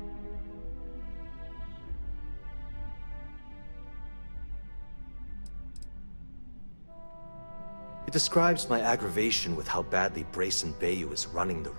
It describes my aggravation with how badly Brayson Bayou is running the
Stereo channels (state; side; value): inverted; both; correlation -1.00